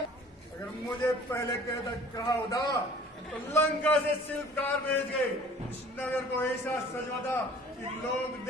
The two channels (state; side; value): normal; both; correlation 0.49